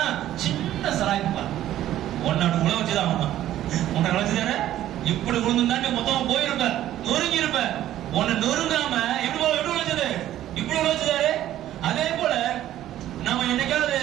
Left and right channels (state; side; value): quieter; left; 12.9 dB